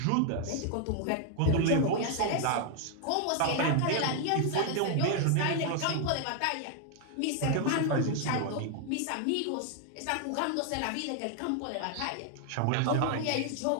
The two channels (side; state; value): both; different; correlation 0.00